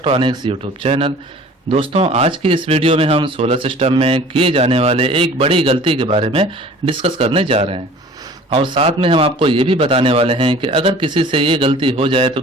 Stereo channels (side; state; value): both; normal; correlation 0.47